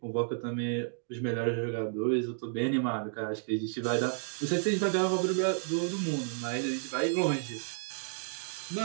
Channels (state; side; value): silent; left; digital silence